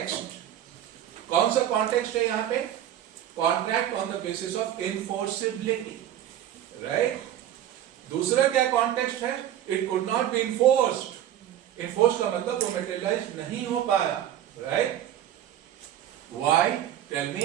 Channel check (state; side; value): quieter; left; 11.4 dB